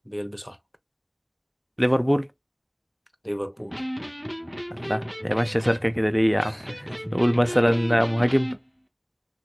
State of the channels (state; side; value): identical; both; correlation 1.00